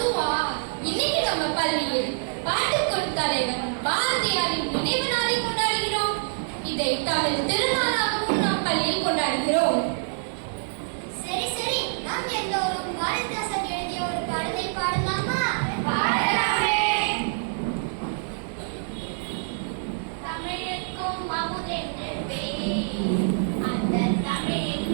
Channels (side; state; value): left; silent; 61 dB below the other